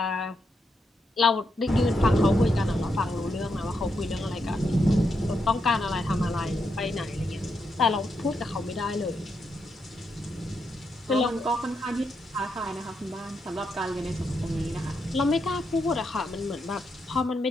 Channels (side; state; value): both; normal; correlation 0.82